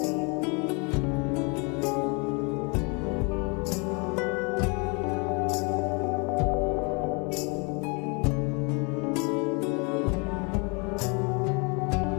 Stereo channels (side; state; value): right; quieter; 32.6 dB